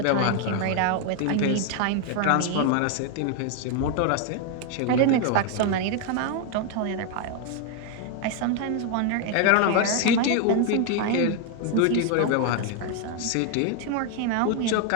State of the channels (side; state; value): both; different; correlation 0.00